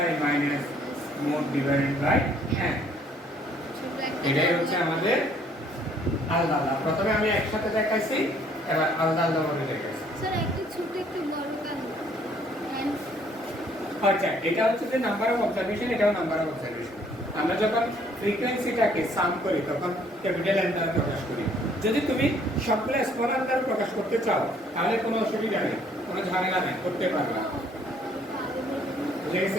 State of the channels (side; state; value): both; normal; correlation 0.63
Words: minus mode divided by n এটাই হচ্ছে আমাদের আলাদা আলাদা। প্রথমে আমি একসাথে দেখাইছি, এবার আলাদা আলাদা ভাবে দেখাইছি। স্যার একটু ছোট একটু বড় কেন? আচ্ছা, এটা হচ্ছে যে নাম্বার অফ অবজারভেশন, এটাও নাম্বার অফ অবজারভেশন। আমরা যখন ফ্রিকোয়েন্সিটাকে সাম করি তখন ক্যাপিটাল এন দ্বারা প্রকাশ করি। যদি তুমি সবগুলো স্মল এন দ্বারা প্রকাশ করতে চাও তাহলে কোনো অসুবিধা নেই, কোনো ঝামেলা নেই, করতে পারবা। বুঝে